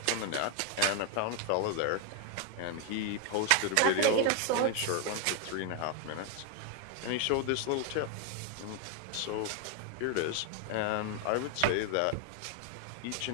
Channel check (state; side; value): different; both; correlation 0.01